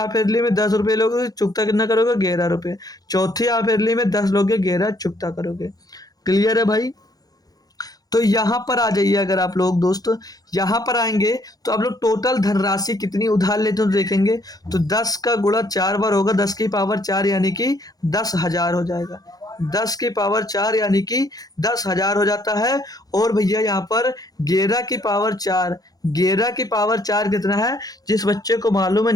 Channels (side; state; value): right; late; 0.18 ms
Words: ईयरली में 10 रुपये लोगे, चुकता कितना करोगे? 11 रुपये। चौथी हाफ ईयरली में 10 लोगे, 11 चुकता करोगे। क्लियर है भाई? तो यहाँ पर आ जाइए, अगर आप लोग दोस्त यहाँ पर आएंगे तो आप लोग टोटल धनराशि कितनी उधार लेते हो देखेंगे, तो 10 का गुणा 4 बार होगा, 10 की पावर 4 यानी कि 10,000 हो जाएगा। 10 की पावर 4 यानी कि 10,000 हो जाता है। और भैया यहाँ पर 11 की पावर 4, 11 की पावर 4 कितना है? जिस बच्चे को मालूम है,